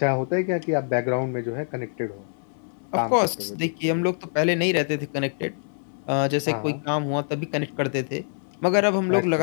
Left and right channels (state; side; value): silent; right; 62 dB below the other